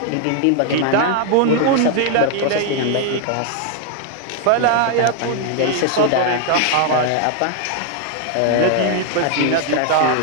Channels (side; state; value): both; different; correlation 0.00